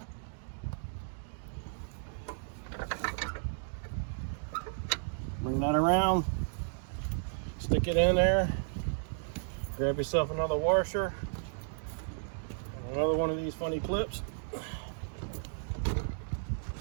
Bring that around, stick it in there, grab yourself another washer, and another one of these funny clips.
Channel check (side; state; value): left; silent; digital silence